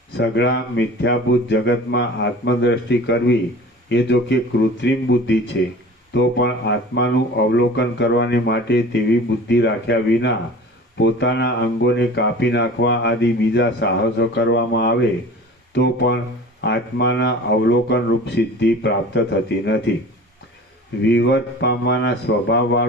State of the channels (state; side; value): normal; both; correlation 0.40